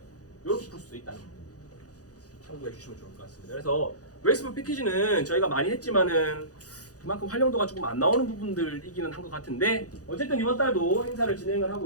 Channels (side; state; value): right; late; 0.67 ms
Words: 요렇게 풀 수도 있다는 거 참고해 주시면 좋을 것 같습니다. 그래서 웰스팜 패키지는 저희가 많이 했지만은 그만큼 활용도가 조금 안 나오는 부분들이기는 한 것 같은데 어쨌든 이번 달도 행사를 진행을